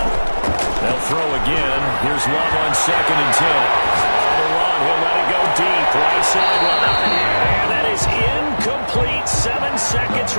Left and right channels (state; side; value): inverted; both; correlation -1.00